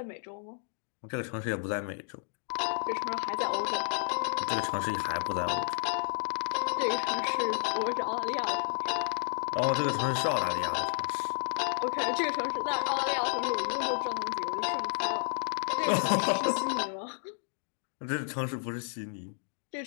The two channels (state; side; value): silent; right; digital silence